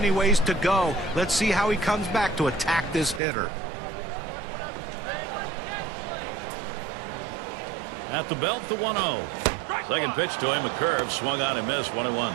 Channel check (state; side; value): drops out; left; at 3.2 s